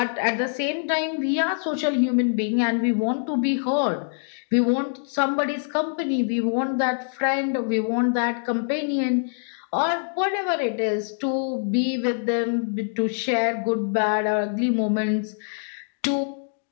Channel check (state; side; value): silent; right; digital silence